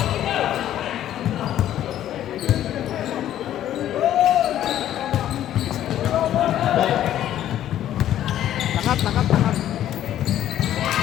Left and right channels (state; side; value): quieter; right; 11.9 dB